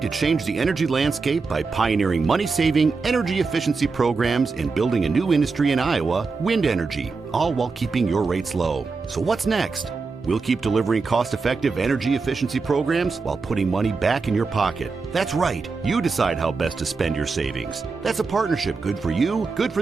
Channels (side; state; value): left; quieter; 4.4 dB